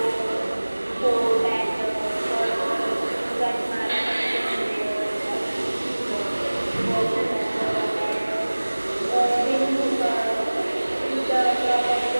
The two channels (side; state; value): both; inverted; correlation -1.00